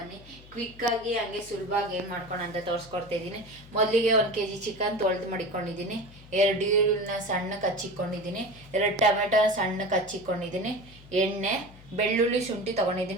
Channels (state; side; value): noise; left; hum, 21 dB below the sound